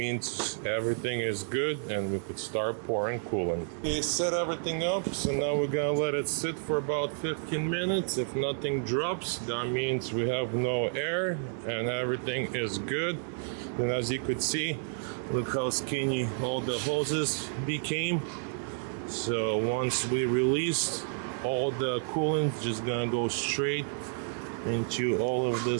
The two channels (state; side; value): silent; left; 57 dB below the other